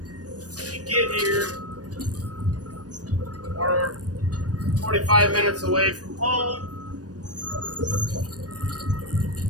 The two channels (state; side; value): late; left; 0.68 ms